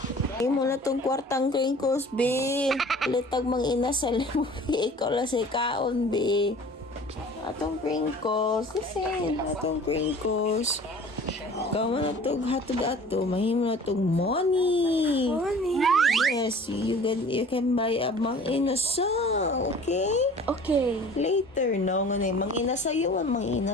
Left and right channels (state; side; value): normal; both; correlation 0.46